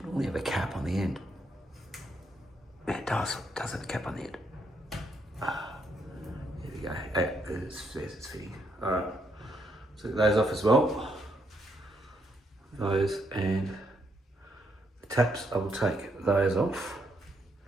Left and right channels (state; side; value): normal; both; correlation 0.76